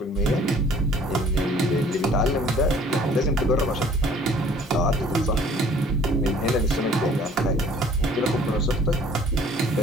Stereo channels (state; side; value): normal; both; correlation 0.55